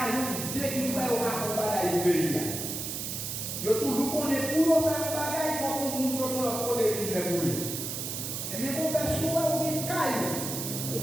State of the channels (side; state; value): right; noise; hiss, 4 dB below the sound